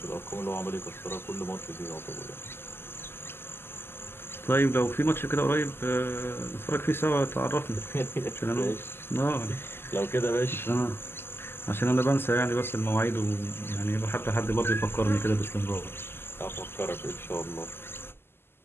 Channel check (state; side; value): late; right; 0.11 ms